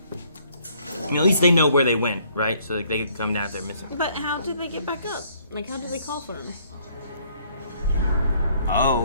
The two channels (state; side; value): inverted; both; correlation -0.64